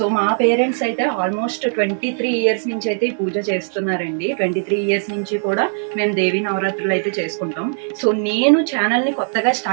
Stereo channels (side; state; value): left; silent; digital silence